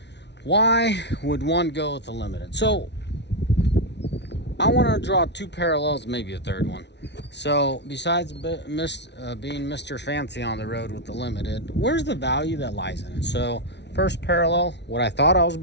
Why would one go with the limited? So I want to draw two parallels, maybe a third one. So besides being Mr. Fancy on the road with the limited, where's the value that lies in it? So first parallel, what I thought I was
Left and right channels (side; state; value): right; late; 0.50 ms